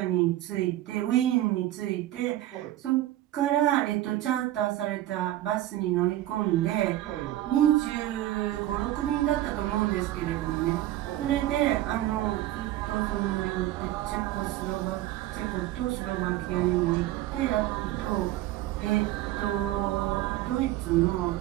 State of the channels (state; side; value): quieter; left; 14.4 dB